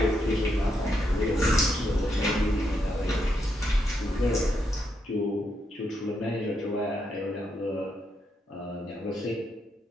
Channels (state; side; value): normal; both; correlation 0.80